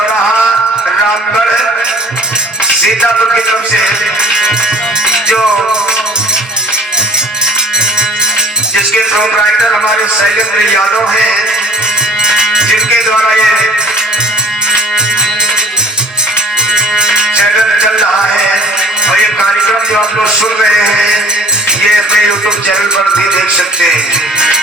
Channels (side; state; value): both; normal; correlation 0.48